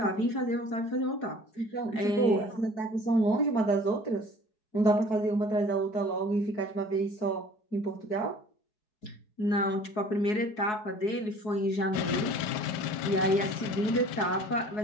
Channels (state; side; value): late; right; 4.7 ms